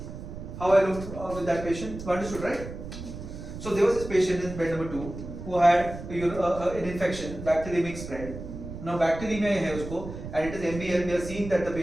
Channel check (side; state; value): right; noise; rumble, 10 dB below the sound